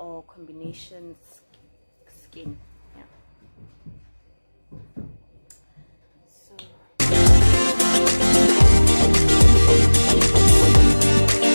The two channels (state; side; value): inverted; both; correlation -1.00